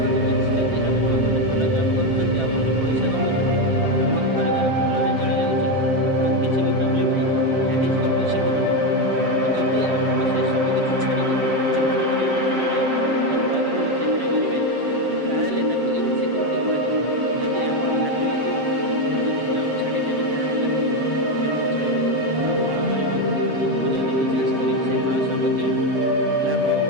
ମିନ୍ସ ଯଦି ଆପଣ ଗୋଟେ ଭଲ ଜବ୍ କରୁଛନ୍ତି ଆଉ ଭଲ ପଇସା କମାଉଛନ୍ତି, ଆପଣଙ୍କ ପରିବାର ଭଲରେ ଚଳିଯାଉଛି, ଆପଣଙ୍କୁ କିଛି ବି ପ୍ରୋବ୍ଲେମ୍ ନାହିଁ, ଦ୍ୟାଟ୍ ଇଜ୍ କଲ୍ଡ ସିକ୍ୟୁରିଟି। ଆଉ ଯଦି ଆପଣ ସେ ସବୁ କିଛି ଛାଡ଼ିକି କିଛି ବଡ଼ କରିବାକୁ ଚାହିଁବେ କି ନୂଆ କରିବାକୁ ଚେଷ୍ଟା କରିବେ, ତାହେଲେ ତାକୁ ଇନସିକ୍ୟୁରିଟି କୁହାଯିବ। ଯଦି ଆପଣ ଭାବିବେ କି ମୁଁ ଯଦି ଜବ୍ ଛାଡ଼ିଦେବି ତାହେଲେ ମୋ ଘର ଲୋକ କେମିତି ଚଳିବେ, ମୁଁ କ'ଣ କରିବି, ମୁଁ ଯଦି ବିଜନେସ୍ କରିବି ସେ ଲସ୍ ହେବ କି ଲାଭ ହେବ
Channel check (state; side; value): late; left; 7.5 ms